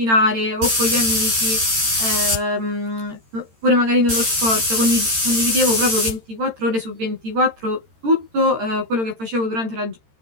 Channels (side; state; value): left; late; 13 ms